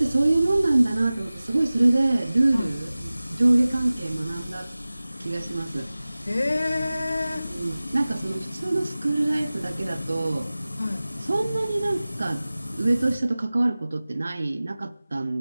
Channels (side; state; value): both; inverted; correlation -0.98